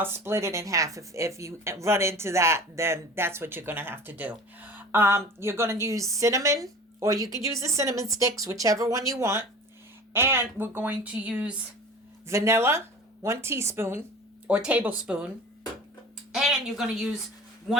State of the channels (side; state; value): both; normal; correlation 0.39